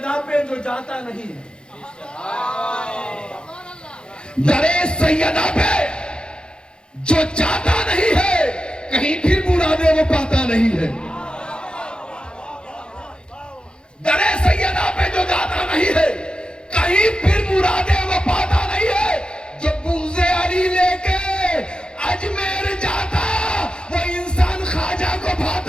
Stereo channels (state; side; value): late; right; 0.050 ms